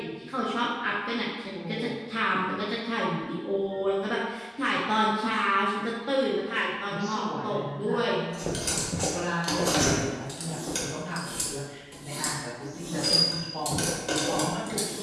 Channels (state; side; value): identical; both; correlation 1.00